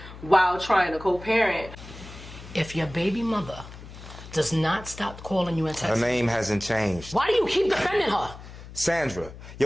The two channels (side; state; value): left; noise; hum, 15 dB below the sound